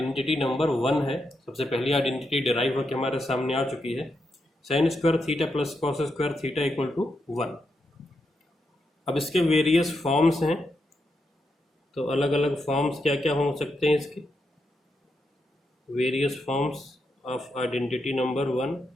नंबर 1 है। सबसे पहली आइडेंटिटी डिराइव होकर हमारे सामने आ चुकी है, sine square theta plus cos square theta equal to 1। अब इसके वेरियस फॉर्म्स हैं, तो अलग अलग फॉर्म्स क्या क्या हो सकते हैं इसके? Various forms of identity number 1,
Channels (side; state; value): both; normal; correlation 0.83